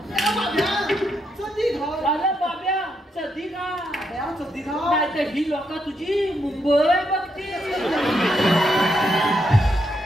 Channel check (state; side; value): normal; both; correlation 0.79